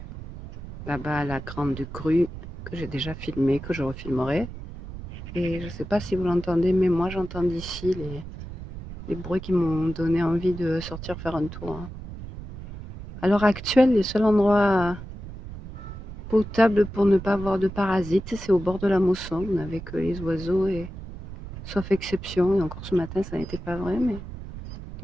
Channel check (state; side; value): noise; right; rumble, 11 dB below the sound